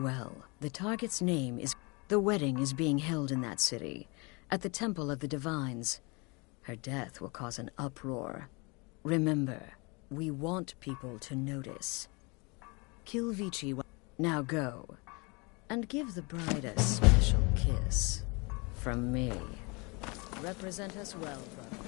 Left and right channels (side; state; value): right; quieter; 28.9 dB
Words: The target's name is... The wedding is being held in that city, at the Temple of the Divines. Her death will cause an uproar. Remember, we want people to notice. Kill Vici. Now go, and give the bride a special kiss. From me. Represent us well, brother.